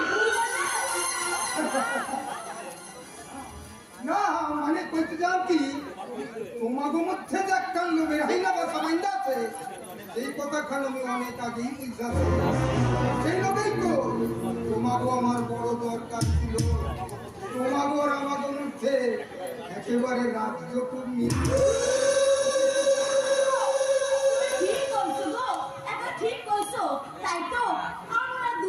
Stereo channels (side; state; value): both; identical; correlation 1.00